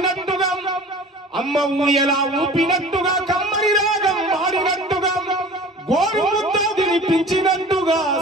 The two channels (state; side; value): normal; both; correlation 0.42